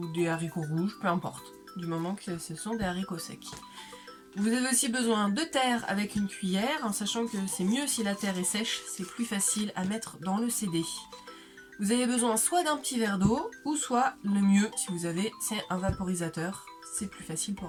des haricots rouges, peu importe, du moment que ce sont des haricots secs. Vous avez aussi besoin de terre avec une cuillère, en sachant que c'est mieux si la terre est sèche, c'est plus facile à mettre dans le CD. Vous avez besoin soit d'un petit verre d'eau, ou soit le mieux, si vous avez, c'est un vaporisateur, c'est plus facile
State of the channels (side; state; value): both; identical; correlation 1.00